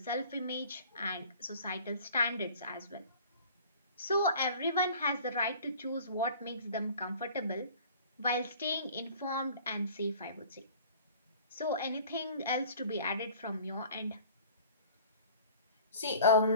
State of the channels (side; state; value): both; inverted; correlation -0.46